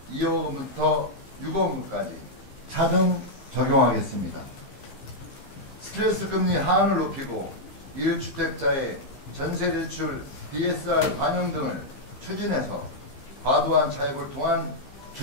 2억 원부터 6억 원까지 차등 적용하겠습니다. 스트레스 금리 하한을 높이고 1주택자의 전세대출 DSR 반영 등을 추진해서 과도한 차입을 통한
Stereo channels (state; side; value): late; right; 15 ms